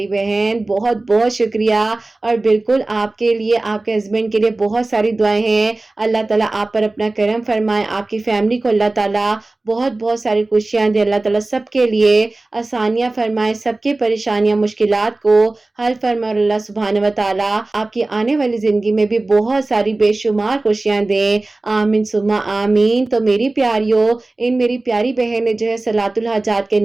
बहन, बहुत बहुत शुक्रिया। और बिल्कुल आपके लिए, आपके हस्बैंड के लिए बहुत सारी दुआएं हैं। अल्लाह ताला आप पर अपना करम फरमाए, आपकी फैमिली को अल्लाह ताला बहुत बहुत सारी खुशियां दे, अल्लाह ताला सबके लिए आसानियां फरमाए, सबकी परेशानियां मुश्किलात को हल फरमाए। और अल्लाह सुब्हान व तआला आपकी आने वाली जिंदगी में भी बहुत सारी बेशुमार खुशियां दे, आमीन सुम्मा आमीन। तो मेरी प्यारियों, इन मेरी प्यारी बहन ने जो है सलातुल हाजात के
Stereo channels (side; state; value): left; quieter; 3.0 dB